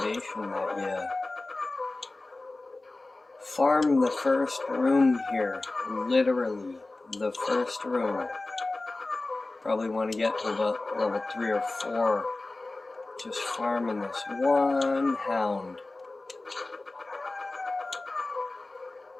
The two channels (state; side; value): quieter; right; 3.1 dB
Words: that you farm the first room here. Literally, the first room. Probably want to get to about level 3 or 4. Just farming this one hound.